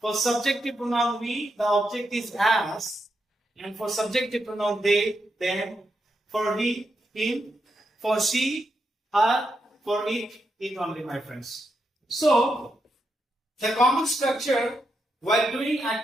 subjective pronoun we, the object is as. And for subjective pronoun they, them. For he, him. For she, her. For it only, my friends. So, the common structure while doing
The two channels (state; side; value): normal; both; correlation 0.83